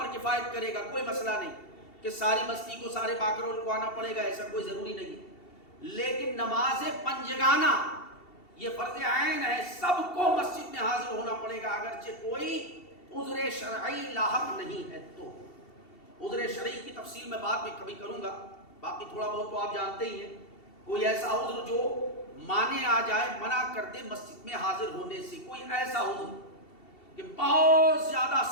کفایت کرے گا، کوئی مسئلہ نہیں کہ ساری بستی کو، سارے باکرول کو آنا پڑے گا، ایسا کوئی ضروری نہیں. لیکن نماز پنجگانہ یہ فرض عین ہے، سب کو مسجد میں حاضر ہونا پڑے گا، اگرچہ کوئی عذر شرعی لاحق نہیں ہے. تو عذر شرعی کی تفصیل میں بعد میں کبھی کروں گا، باقی تھوڑا بہت تو آپ جانتے ہی ہیں. کوئی ایسا عذر جو مانے آ جائے، منع کر دے مسجد میں حاضر ہونے سے. کوئی ایسا عذر کہ بہت زیادہ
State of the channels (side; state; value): right; late; 2.7 ms